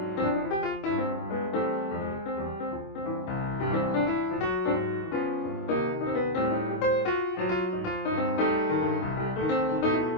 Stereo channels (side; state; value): right; late; 25 ms